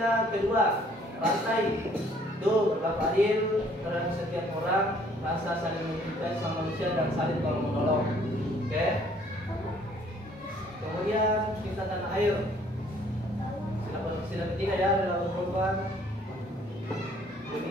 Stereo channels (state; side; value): normal; both; correlation 0.60